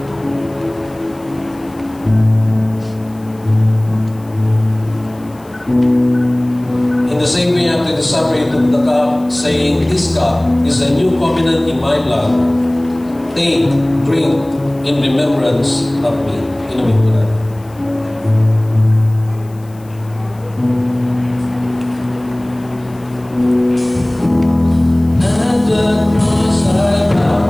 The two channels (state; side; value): noise; left; hiss, 28 dB below the sound